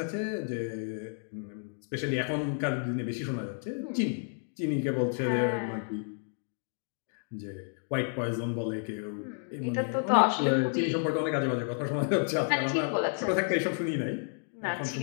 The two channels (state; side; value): silent; right; 57 dB below the other